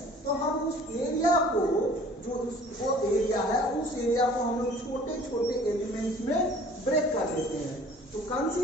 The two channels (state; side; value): normal; both; correlation 0.50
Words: तो हम उस एरिया को जो वो एरिया है उस एरिया को हम लोग छोटे छोटे एलिमेंट्स में ब्रेक कर देते हैं। तो